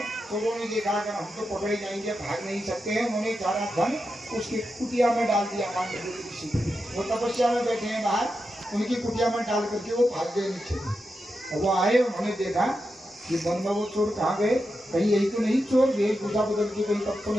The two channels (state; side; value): normal; both; correlation 0.88